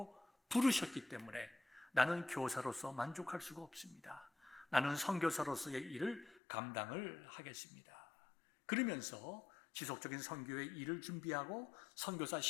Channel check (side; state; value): right; drops out; at 6.4 s